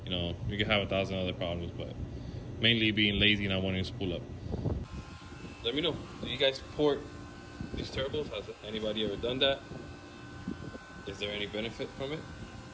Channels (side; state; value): both; identical; correlation 1.00